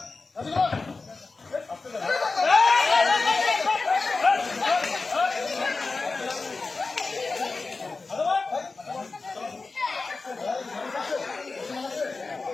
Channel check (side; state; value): right; quieter; 3.9 dB